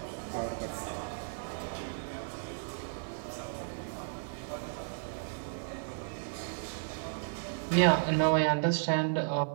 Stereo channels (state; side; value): silent; left; digital silence